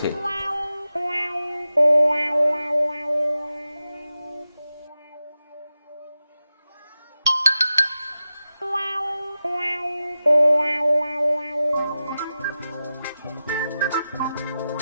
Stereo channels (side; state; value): both; inverted; correlation -0.92